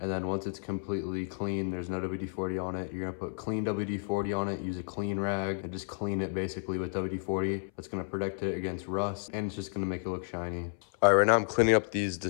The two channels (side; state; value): right; silent; 57 dB below the other